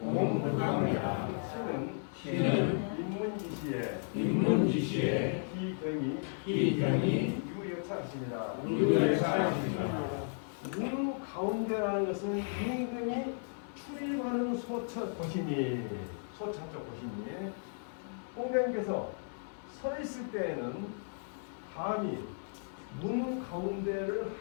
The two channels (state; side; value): silent; right; digital silence